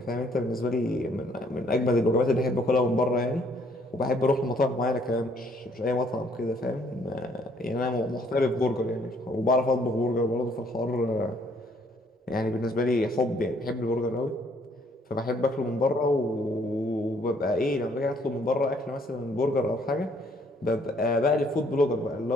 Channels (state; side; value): normal; both; correlation 0.65